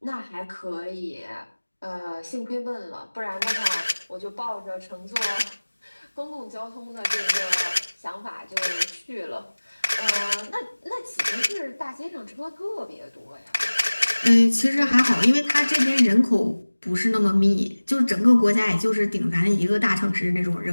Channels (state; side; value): inverted; both; correlation -1.00